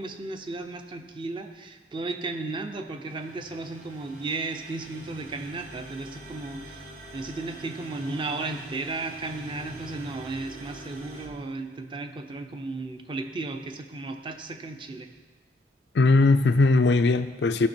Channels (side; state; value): both; normal; correlation 0.66